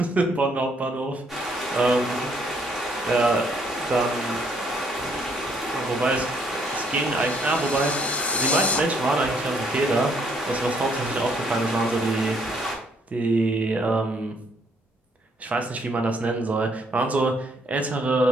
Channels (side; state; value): both; normal; correlation 0.69